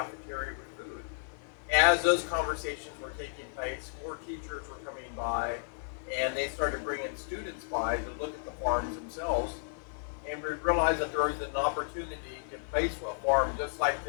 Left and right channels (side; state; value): right; silent; 56 dB below the other